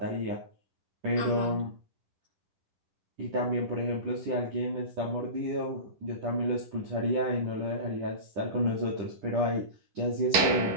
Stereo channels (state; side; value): late; left; 11 ms